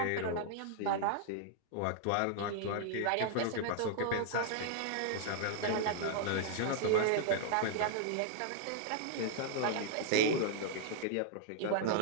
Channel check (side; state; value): both; different; correlation -0.01